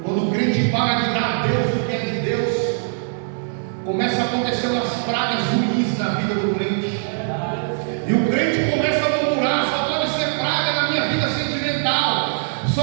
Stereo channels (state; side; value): silent; left; digital silence